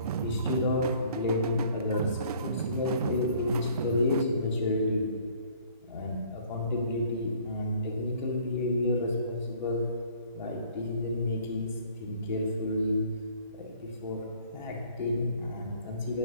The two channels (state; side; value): inverted; both; correlation -0.57